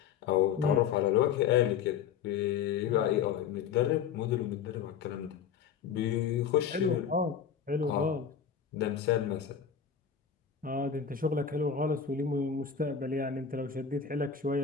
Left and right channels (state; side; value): quieter; right; 7.5 dB